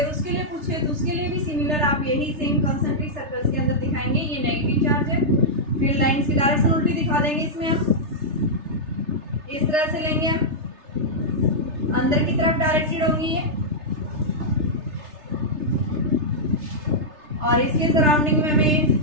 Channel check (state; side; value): late; left; 3.3 ms